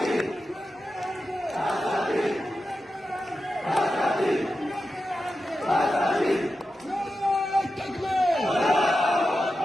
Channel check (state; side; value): normal; both; correlation 0.91